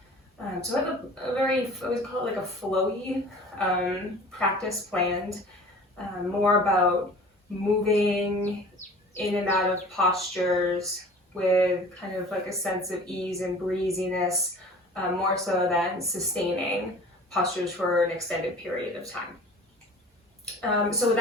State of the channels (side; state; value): both; normal; correlation 0.44